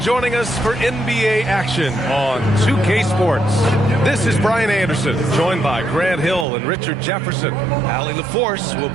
us for NBA action on 2K Sports. This is Brian Anderson, joined by Grant Hill and Richard Jefferson. Allie LaForce will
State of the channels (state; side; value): drops out; left; at 6.5 s